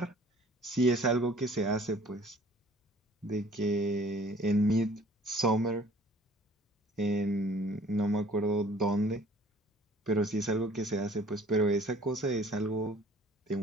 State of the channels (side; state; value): both; normal; correlation 0.53